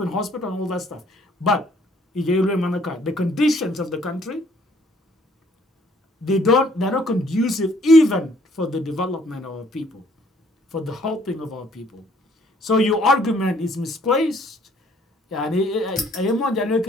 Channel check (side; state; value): both; normal; correlation 0.62